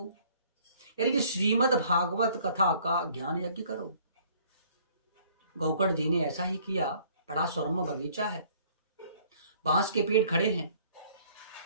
यानी कि श्रीमद् भागवत कथा का ज्ञान यज्ञ करो। गोकर्ण जी ने ऐसा ही किया। बड़ा सुरम्य बगीचा है, बांस के पेड़ खड़े हैं।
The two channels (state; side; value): inverted; both; correlation -0.58